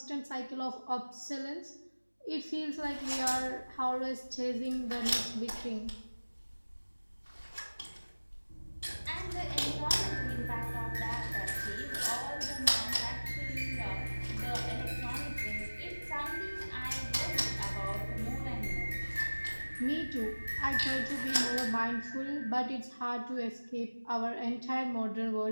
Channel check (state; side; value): inverted; both; correlation -1.00